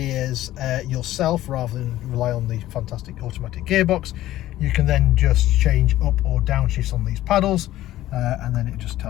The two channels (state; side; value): quieter; right; 14.6 dB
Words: yourself rather than rely on the fantastic automatic gearbox, you can then just change up or down shifts on these paddles. And then it just